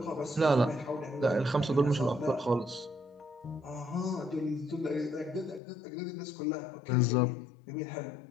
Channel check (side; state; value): right; drops out; at 5.6 s